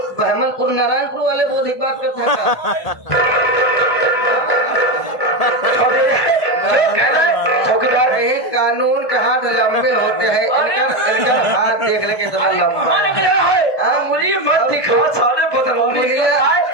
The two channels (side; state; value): right; late; 1.2 ms